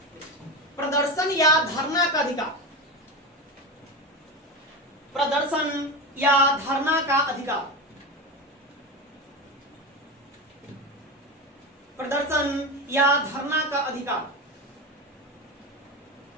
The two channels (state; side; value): normal; both; correlation 0.20